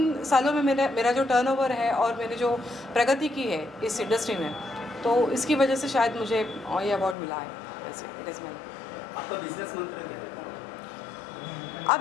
सालों में मेरा जो टर्नओवर है और मैंने जो प्रगति की है इस इंडस्ट्री में, तो इसकी वजह से शायद मुझे ये अवार्ड मिला है। वैसे इट इज़ माय। आपका बिजनेस मंत्र क्या है?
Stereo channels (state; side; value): drops out; right; at 7.2 s